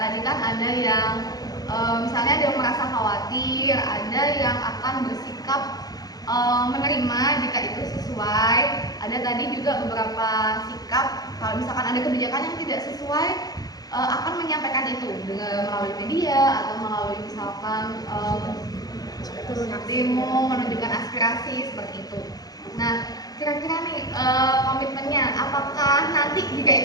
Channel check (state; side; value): late; right; 0.19 ms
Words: kan ada yang misalnya ada yang merasa khawatir, ada yang akan bersikap menerima jika itu sesuai. Ada tadi juga beberapa sikap kalau misalkan ada kebijakan yang tidak sesuai akan menyampaikan itu dengan melalui media atau melalui misalkan demo menunjukkan aspirasi seperti itu. Nah kira-kira nih komitmennya apakah nanti jika